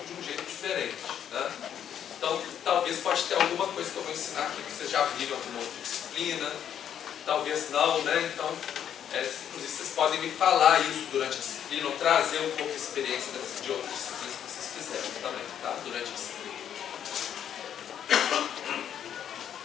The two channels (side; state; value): right; quieter; 9.4 dB